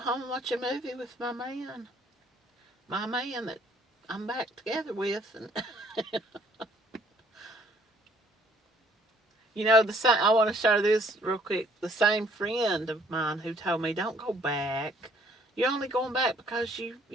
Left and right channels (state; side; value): normal; both; correlation 0.63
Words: and watch a movie with my man. My man that I'm back together with. And I want to share this real quick. The same friend of mine who told me, don't go back. You're only going back because